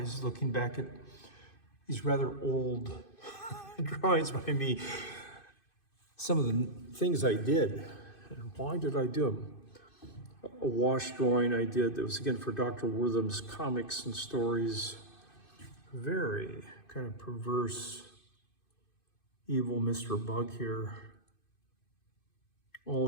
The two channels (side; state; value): right; late; 2.5 ms